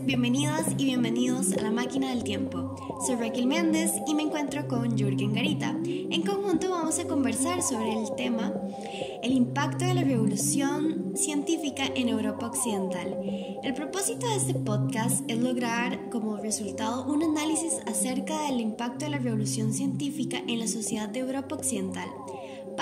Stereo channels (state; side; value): identical; both; correlation 1.00